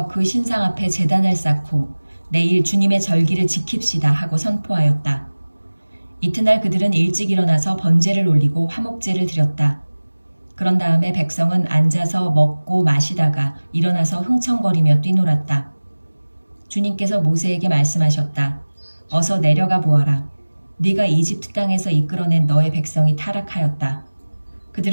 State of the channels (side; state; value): both; inverted; correlation -1.00